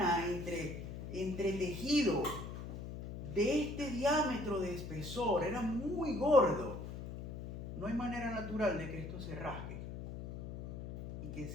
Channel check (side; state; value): left; noise; hum, 8 dB below the sound